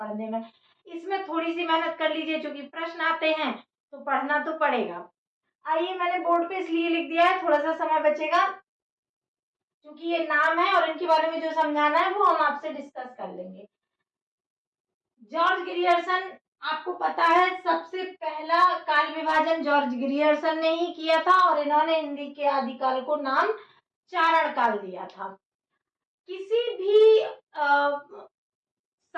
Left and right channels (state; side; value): identical; both; correlation 1.00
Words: में। इसमें थोड़ी सी मेहनत कर लीजिए, क्योंकि प्रश्न आते हैं तो पढ़ना तो पड़ेगा। आइए, मैंने बोर्ड पे इसलिए लिख दिया है, थोड़ा सा समय बचेगा क्योंकि ये नाम है और इनके बारे में जो समझाना है वो हम आपसे डिस्कस कर लेंगे। जॉर्ज ग्रियर्सन, आपको पता है सबसे पहला काल विभाजन जॉर्ज ग्रियर्सन ने ही किया था और इन्होंने हिंदी के आदिकाल को नाम चारण काल दिया था। किसी भी